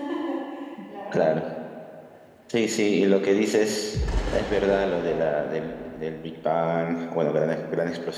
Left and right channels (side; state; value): both; identical; correlation 1.00